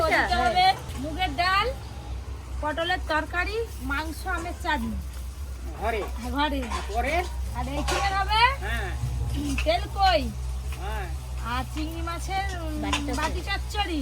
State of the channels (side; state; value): both; identical; correlation 1.00